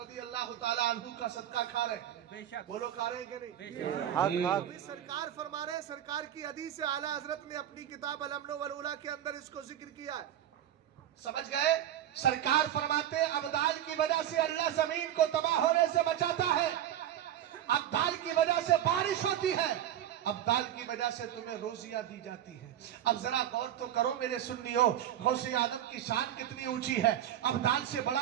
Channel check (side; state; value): left; quieter; 11.4 dB